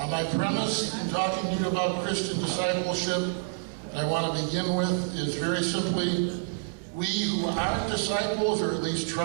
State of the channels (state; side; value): silent; left; digital silence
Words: My premise in talking to you about Christian discipleship, and I want to begin with, is very simply, we who aren't disciples, or at least